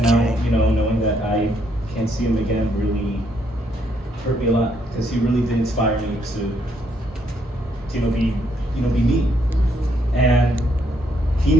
now, knowing that I can't see him again really hurt me a lot because he really did inspire me to be me. And he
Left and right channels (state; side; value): normal; both; correlation 0.72